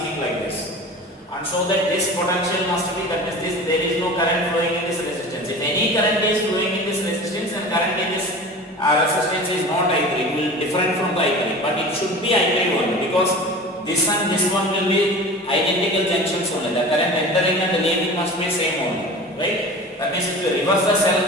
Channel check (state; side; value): normal; both; correlation 0.36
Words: like this. And so that this potential must be, that means this, there is no current flowing in this resistance. If any current is flowing in this resistance, then current in this resistance is not I3, it will be different from the I3, but it should be I3 only, because this and this one will be identical junctions only. The current entering and leaving must be same only, right? That means if you reverse the